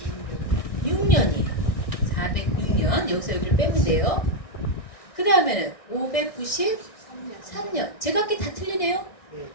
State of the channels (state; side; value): late; right; 1.6 ms